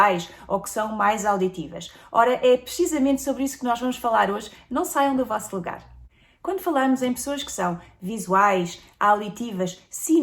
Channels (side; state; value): both; identical; correlation 1.00